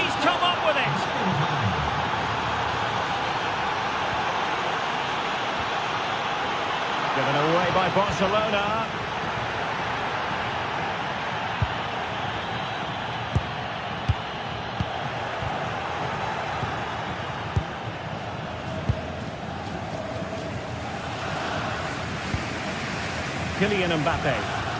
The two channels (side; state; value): both; identical; correlation 1.00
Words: come up with it. Given away by Barcelona. Kylian Mbappe.